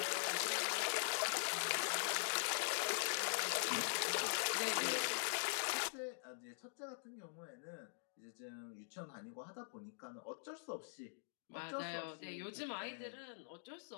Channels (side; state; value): right; silent; digital silence